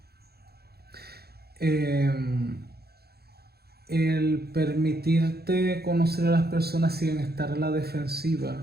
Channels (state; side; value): late; left; 0.46 ms